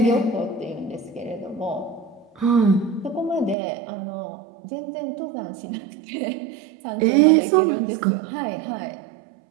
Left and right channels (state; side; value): drops out; left; at 3.6 s